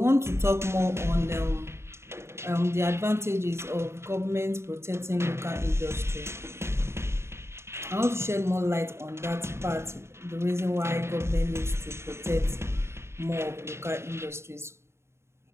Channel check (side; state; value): left; late; 0.13 ms